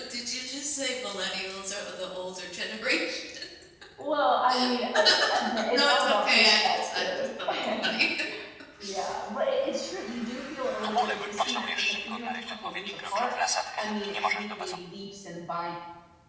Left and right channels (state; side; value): identical; both; correlation 1.00